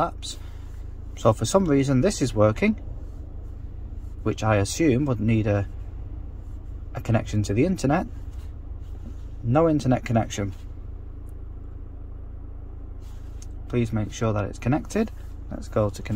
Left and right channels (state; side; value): identical; both; correlation 1.00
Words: So for some reason this is working, which I assume would need a connection to the internet. No internet connection. Please make sure that it's connected. Let's go to